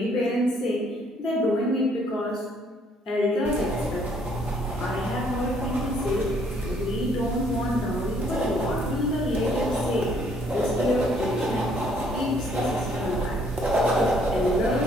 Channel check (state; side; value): normal; both; correlation 0.64